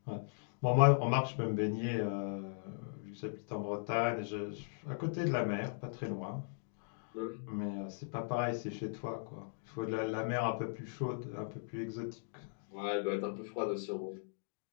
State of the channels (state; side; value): silent; right; digital silence